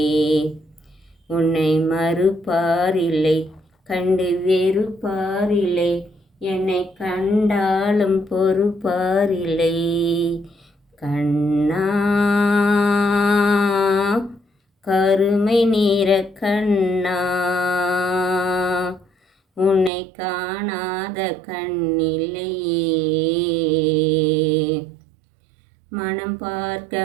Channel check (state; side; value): drops out; left; at 19.9 s